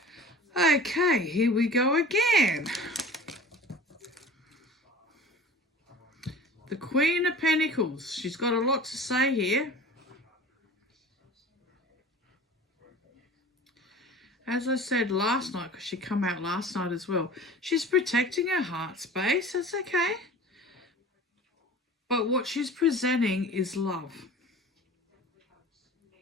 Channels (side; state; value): both; normal; correlation 0.41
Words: Okay, here we go again. The Queen of Pentacles. She's got a lot to say here. As I said last night, because she come out last night as well, she's protecting her heart space. That's okay. But what she's presenting is love.